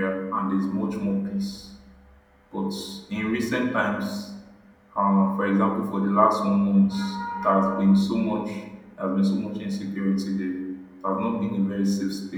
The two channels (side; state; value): both; identical; correlation 1.00